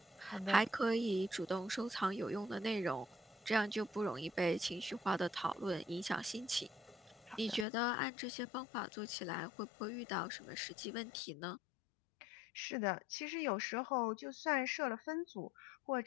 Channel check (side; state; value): right; drops out; at 7.7 s